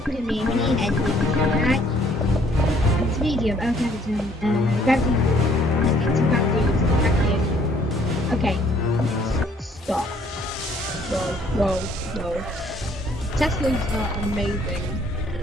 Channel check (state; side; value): normal; both; correlation 0.62